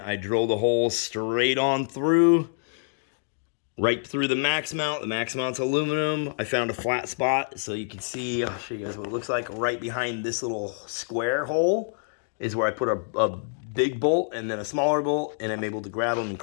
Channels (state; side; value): silent; right; digital silence